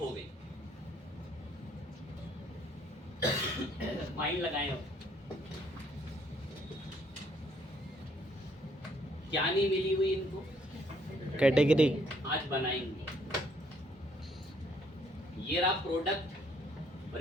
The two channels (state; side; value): normal; both; correlation 0.67